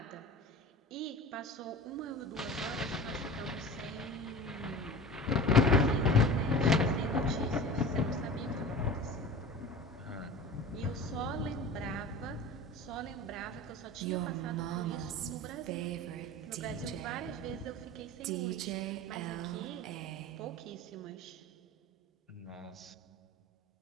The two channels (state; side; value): normal; both; correlation 0.37